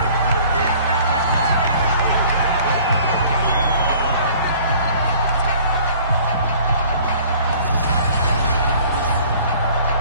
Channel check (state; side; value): inverted; both; correlation -0.52